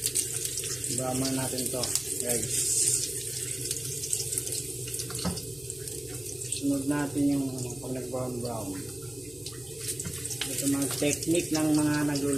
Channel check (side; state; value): left; noise; hum, 23 dB below the sound